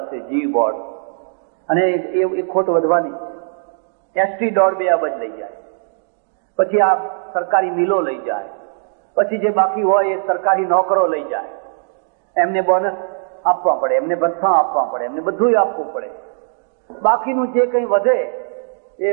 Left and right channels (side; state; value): left; silent; 67 dB below the other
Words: જી બોર્ડ. અને એ ખોટ વધવાની. એસટી 1.5-2 અબજ લઈ જાય, પછી આ સરકારી મિલો લઈ જાય, પછી જે બાકી હોય એ સરકારી નોકરો લઈ જાય. એમને બોનસ આપવા પડે, એમને ભથ્થા આપવા પડે, એમને બધું આપવું પડે. બાકીનું જે કંઈ વધે એ